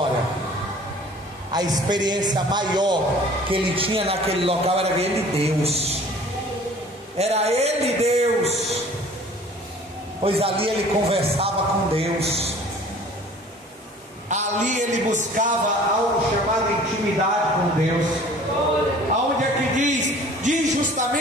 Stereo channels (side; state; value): both; normal; correlation 0.49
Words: A experiência maior que ele tinha naquele local era ele, Deus. Era ele, Deus. Pois ali ele conversava com Deus. Ali ele buscava algo chamado intimidade com Deus. Aonde é que diz